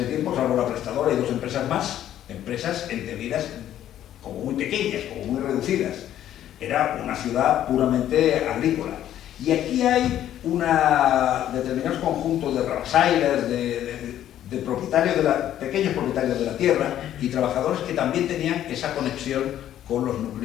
tiempo, salvo la prestadora y dos empresas más, empresas entendidas como muy pequeñas, como muy reducidas. Era una ciudad puramente agrícola. Y aquí hay determinados conjuntos de rabasailas, de propietarios pequeños propietarios de la tierra y trabajadores que también tenían esa conexión con los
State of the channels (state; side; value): quieter; right; 11.6 dB